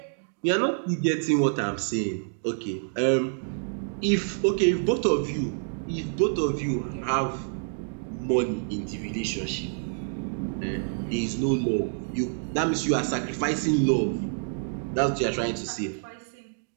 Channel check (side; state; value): left; silent; digital silence